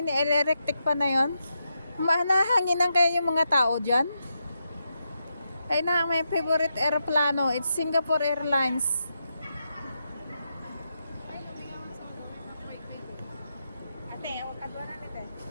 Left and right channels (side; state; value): both; inverted; correlation -0.85